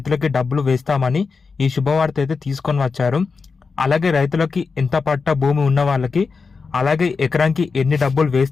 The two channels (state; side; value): quieter; right; 4.8 dB